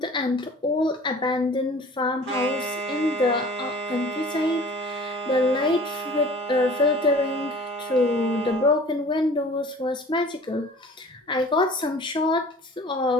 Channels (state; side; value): normal; both; correlation 0.46